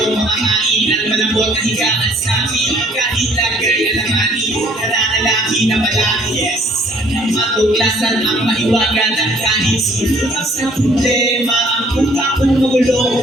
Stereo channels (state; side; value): normal; both; correlation 0.59